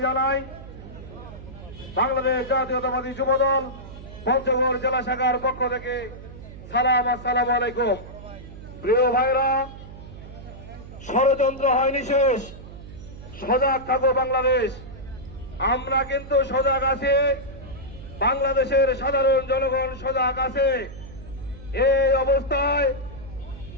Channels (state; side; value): noise; right; hum, 15 dB below the sound